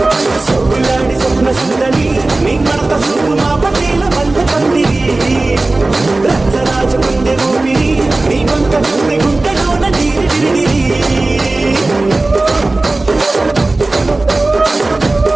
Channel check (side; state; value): left; quieter; 3.1 dB